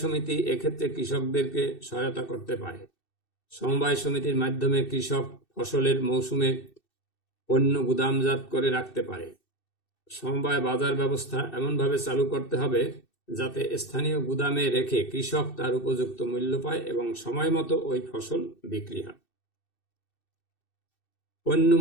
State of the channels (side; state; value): right; late; 2.6 ms